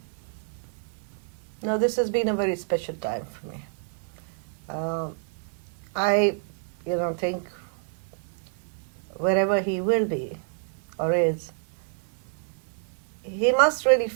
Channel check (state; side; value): silent; left; digital silence